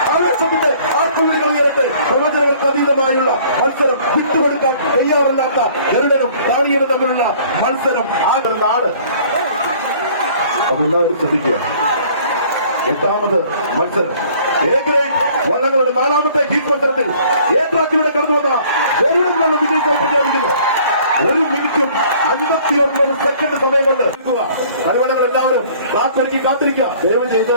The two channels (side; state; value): both; inverted; correlation -0.54